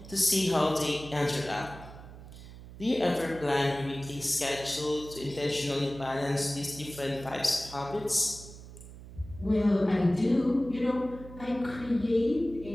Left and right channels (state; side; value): noise; right; hum, 16 dB below the sound